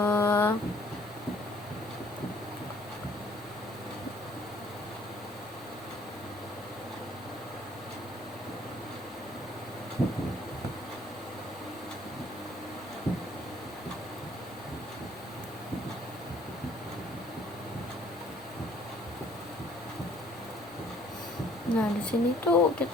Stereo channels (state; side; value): noise; left; rumble, 29 dB below the sound